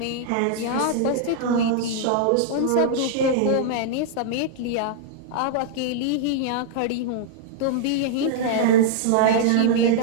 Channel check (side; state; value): both; different; correlation -0.01